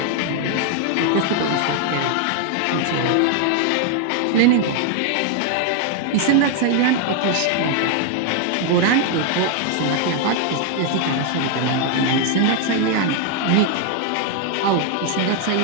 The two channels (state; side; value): different; both; correlation 0.00